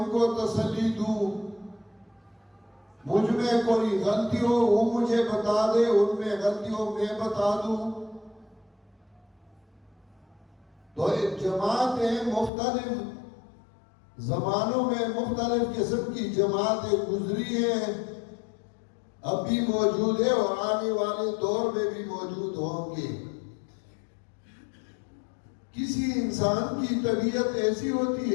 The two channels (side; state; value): right; drops out; at 12.5 s